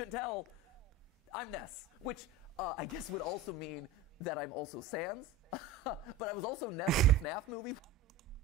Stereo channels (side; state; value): left; quieter; 3.3 dB